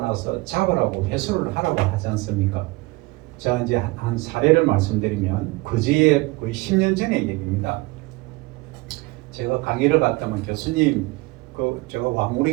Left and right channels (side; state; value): left; quieter; 23.2 dB